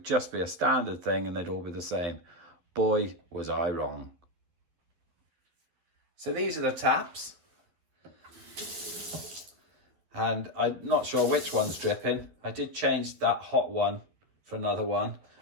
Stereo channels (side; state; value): left; late; 12 ms